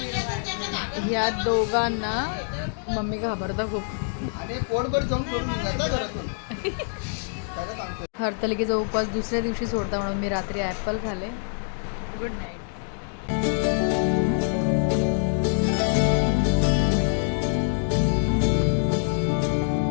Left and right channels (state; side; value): silent; right; digital silence